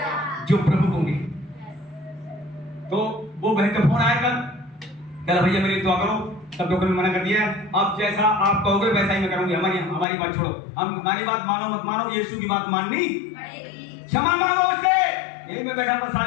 जो प्रभु होंगे। तो वो बहन का फोन आया कल भैया मेरी दुआ करो, सब डॉक्टर ने मना कर दिया है, अब जैसा आप कहोगे वैसा ही मैं करूंगी, हमारी बात छोड़ो, हम हमारी बात मानो मत मानो, यीशु की बात माननी पड़ेगी, क्षमा मांगो उससे। यही मैं बैठा था,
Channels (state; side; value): drops out; right; at 10.1 s